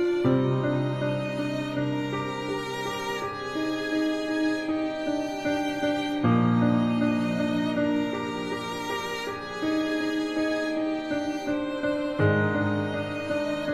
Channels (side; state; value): both; identical; correlation 1.00